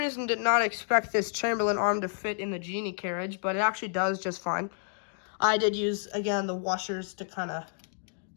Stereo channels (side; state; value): right; silent; digital silence